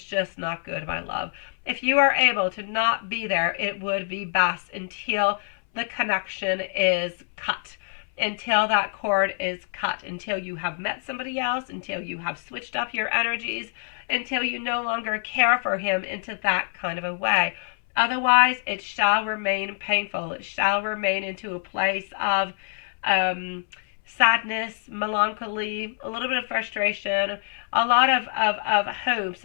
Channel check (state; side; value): silent; right; 61 dB below the other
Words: just not good, my love. If you are able to not be there, it would be best until the connection is cut, until that cord is cut, until you have met somebody else, until you have switched up your energies, until you no longer care for him into that kind of a way. Otherwise, it shall remain painful. It shall remain into a place of sadness, melancholy, a little bit of frustration, a lot of